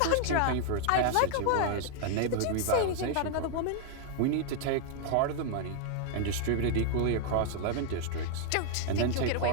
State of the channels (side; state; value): both; different; correlation 0.00